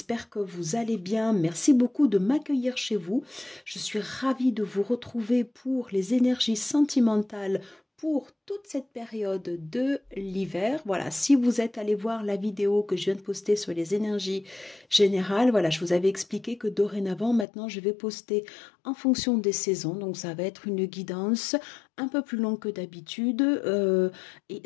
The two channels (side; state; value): right; drops out; at 17.4 s